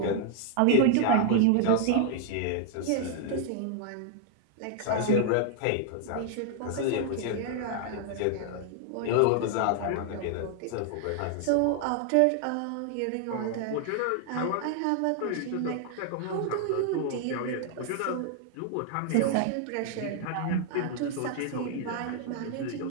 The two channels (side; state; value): both; different; correlation 0.00